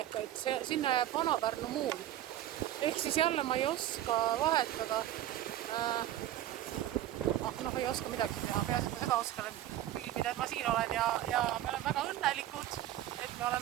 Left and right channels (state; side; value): quieter; left; 13.1 dB